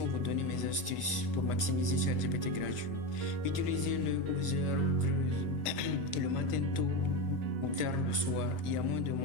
vous donner mes astuces pour maximiser ChatGPT gratuit. Utilisez-le aux heures creuses, le matin tôt ou tard le soir. Il y a moins de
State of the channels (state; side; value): late; right; 1.3 ms